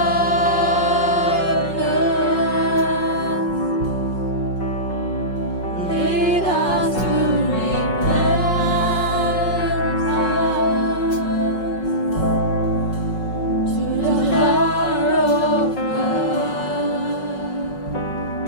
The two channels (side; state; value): right; late; 5.4 ms